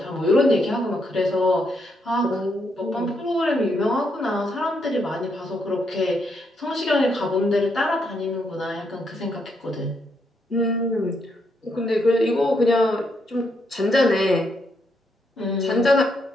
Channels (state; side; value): normal; both; correlation 0.77